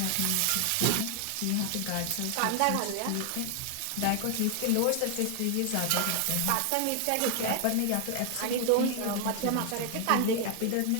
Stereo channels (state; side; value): different; both; correlation 0.00